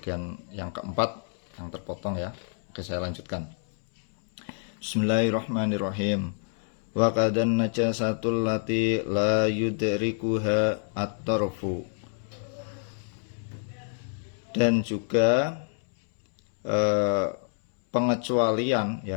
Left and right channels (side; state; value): right; silent; 60 dB below the other